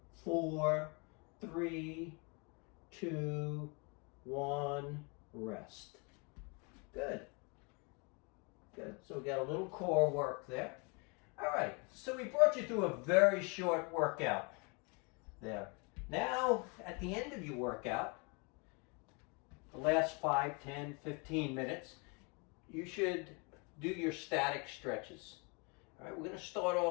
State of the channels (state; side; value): quieter; right; 32.2 dB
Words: 4, 3, 2, 1. Rest. Good. Good. So we got a little core work there. All right. So we brought you through a very short workout there. Now, at the end of your workout, the last 5, 10, 15 minutes, you should do your static stretches. All right, we're going to start